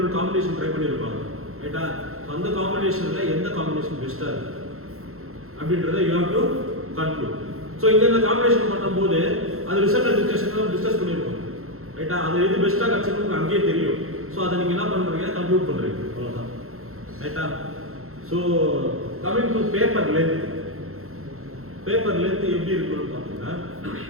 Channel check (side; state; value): left; late; 0.62 ms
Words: காம்பினேஷன் ட்ரை பண்ணியிருப்பாங்க. ரைட்டா? அந்த காம்பினேஷன்ல எந்த காம்பினேஷன் பெஸ்டா இருக்கு அப்படின்றத you have to conclude. So இந்த காம்பினேஷன் பண்ணும்போது அது ரிசல்ட் டிஸ்கஷன்ல டிஸ்கஸ் பண்ணிருக்கோம். ரைட்டா? அது எது பெஸ்டா கிடைச்சிருக்கு அங்கேயே தெரியும். ஸோ அதை நீங்க என்ன பண்றீங்க? கன்க்ளூட் பண்றீங்க. அவ்வளவுதான். ரைட்டா? So coming to paper length. Paper length எப்படி இருக்குன்னு பார்த்தீங்கன்னா